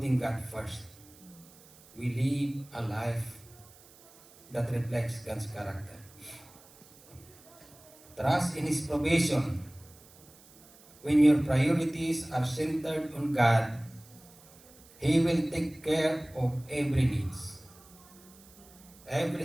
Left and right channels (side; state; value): right; noise; hiss, 24 dB below the sound